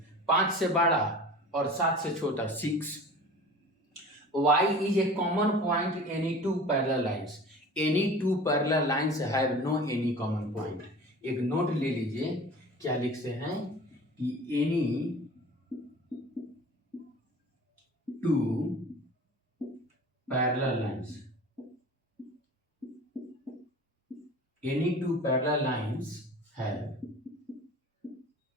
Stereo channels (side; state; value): both; normal; correlation 0.40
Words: 5 से बड़ा और 7 से छोटा 6। y is a common point in any two parallel lines, any two parallel lines have no any common point। एक note ले लीजिए, क्या लिखते हैं कि any two parallel lines. Any two parallel lines have